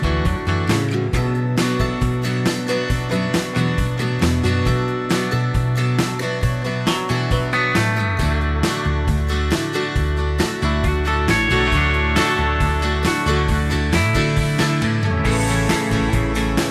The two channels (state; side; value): identical; both; correlation 1.00